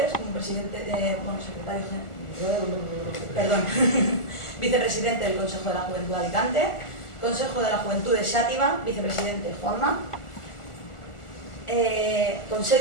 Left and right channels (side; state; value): right; late; 1.4 ms